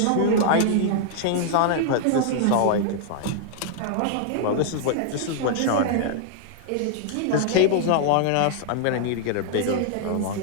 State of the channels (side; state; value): both; different; correlation -0.01